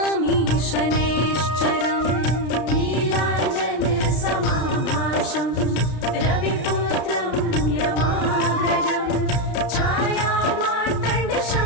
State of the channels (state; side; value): late; right; 33 ms